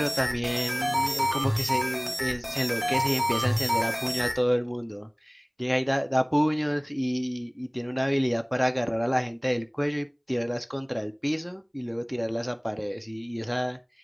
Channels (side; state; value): both; identical; correlation 1.00